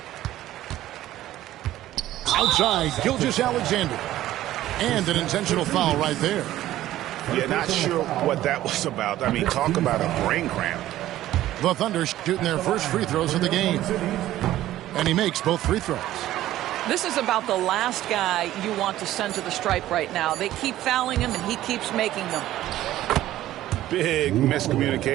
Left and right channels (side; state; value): left; quieter; 14.1 dB